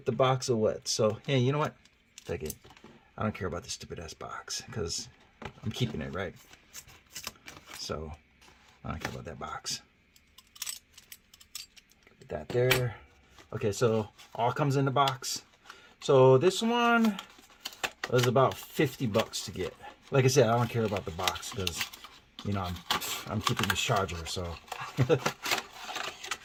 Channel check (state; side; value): identical; both; correlation 1.00